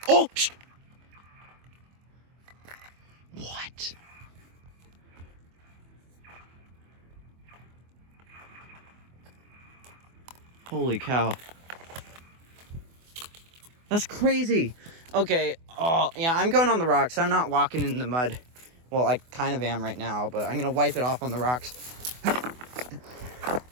Oh! Shh. What? Holy cow. That's crazy. Okay. Oh, yeah, I'm going on the rocks. I'm not walking in the mud. Well, I kind of am right now, but I'm gonna wipe it off on the rocks. All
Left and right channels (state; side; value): late; left; 24 ms